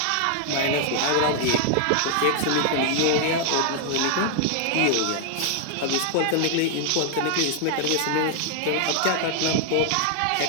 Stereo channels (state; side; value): different; both; correlation 0.00